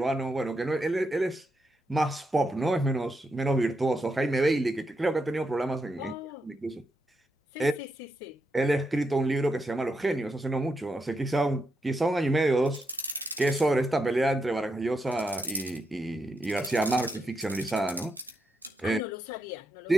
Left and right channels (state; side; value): normal; both; correlation 0.83